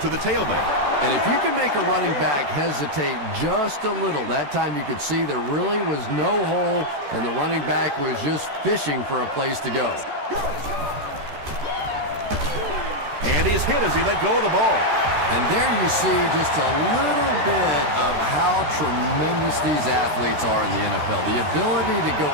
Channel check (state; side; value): late; left; 14 ms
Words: the tailback. And if you can make a running back hesitate just a little, that time you could see there really was no hole, and the running back was just fishing for a place to go. And he's hit as he let go of the ball. And there you see just a little bit of how tremendous these athletes are in the NFL. The ability to go